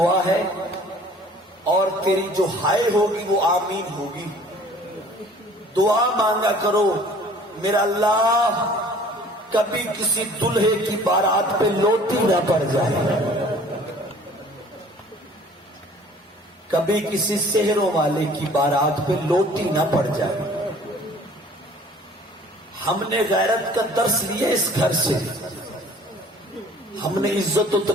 ہے, اور تیری جو ہائے ہوگی وہ آمین ہوگی. دعا مانگا کرو میرا اللہ کبھی کسی دلہے کی بارات پہ لوٹی نہ پڑ جائے, کبھی کسی سحروں والے کی بارات پہ لوٹی نہ پڑ جائے. ہم نے غیرت کا درس لیا اس گھر سے, ہم نے عزت و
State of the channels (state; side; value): normal; both; correlation 0.51